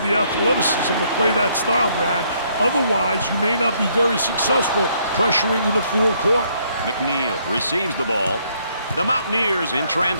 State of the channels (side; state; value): both; inverted; correlation -0.69